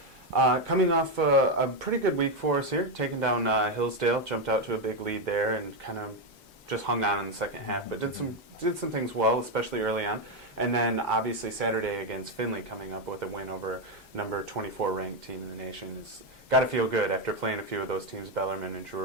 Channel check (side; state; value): both; normal; correlation 0.06